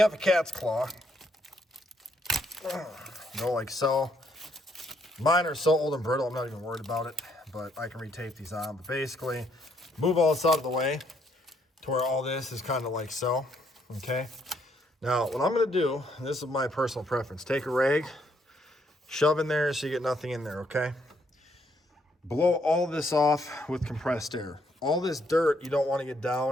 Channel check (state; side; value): normal; both; correlation 0.71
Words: a cat's claw, go like so. Mine are so old and brittle, I'm not even worried about it, but I can retape these on. But basically, move all this out of the way to where all this is kind of like so, okay? Now, what I'm gonna do, and this is my personal preference, take a rag, shove in there so you get nothing in there, okay? Blow all this off with compressed air. All this dirt, you don't want to get